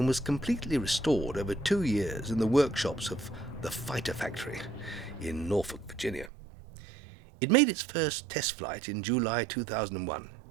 was completely restored over 2 years in the workshops of the Fighter Factory in Norfolk, Virginia. It made its first test flight in July 2001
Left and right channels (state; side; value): drops out; left; at 6.3 s